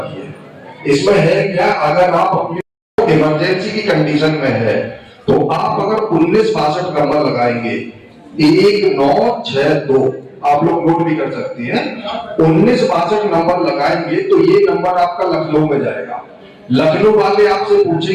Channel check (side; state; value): both; identical; correlation 1.00